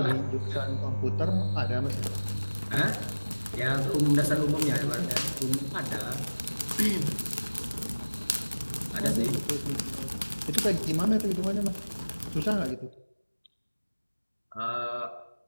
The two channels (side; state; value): both; inverted; correlation -1.00